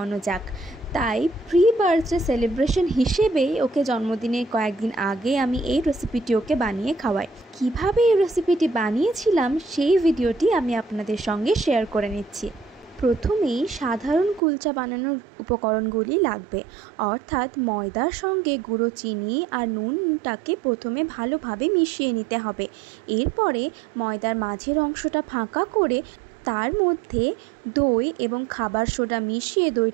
যাক। তাই প্রি বার্থডে সেলিব্রেশন হিসেবে ওকে জন্মদিনের কয়েকদিন আগে আমি এই রেসিপিটি ওকে বানিয়ে খাওয়াই। কিভাবে এই রেসিপিটি বানিয়েছিলাম সেই ভিডিওটি আমি আপনাদের সঙ্গে শেয়ার করে নিচ্ছি। প্রথমেই সাধারণ কুলচা বানানোর উপকরণগুলি লাগবে, অর্থাৎ ময়দার সঙ্গে গুঁড়ো চিনি আর নুনটাকে প্রথমে ভালোভাবে মিশিয়ে নিতে হবে। এরপরে ময়দার মাঝের অংশটা ফাঁকা করে তার মধ্যে দই এবং খাবার সোডা মিশিয়ে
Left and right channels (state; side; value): drops out; left; at 14.4 s